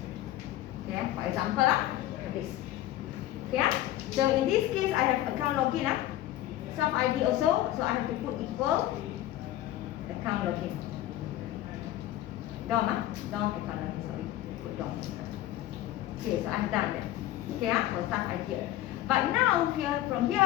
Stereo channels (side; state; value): right; quieter; 14.1 dB